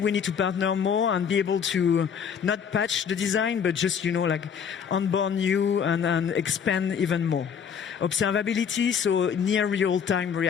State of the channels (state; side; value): quieter; right; 7.3 dB